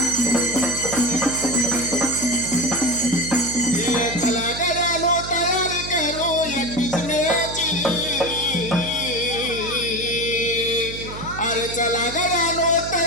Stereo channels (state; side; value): noise; right; hum, 11 dB below the sound